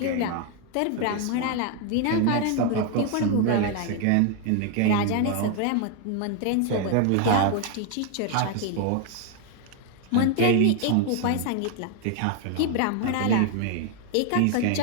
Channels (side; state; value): both; different; correlation 0.01